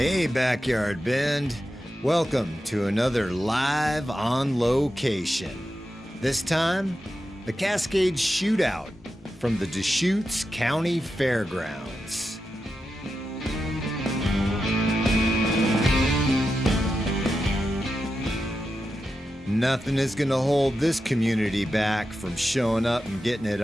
Backyard Bend. Welcome to another Live on Location. This time, the Cascade Shootout from the Deschutes County Fairgrounds. Nothing is going to hold this community back from showing up and getting it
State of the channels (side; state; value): both; normal; correlation 0.89